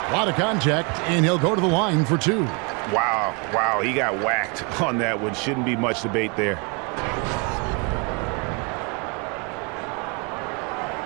A lot of contact, and he'll go to the line for 2. Wow, he got whacked on that one. Shouldn't be much debate there.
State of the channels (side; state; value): left; quieter; 33.0 dB